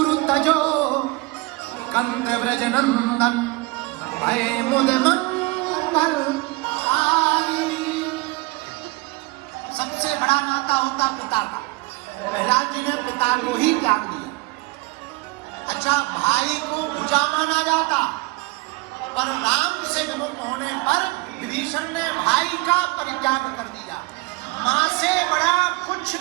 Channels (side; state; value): left; quieter; 22.5 dB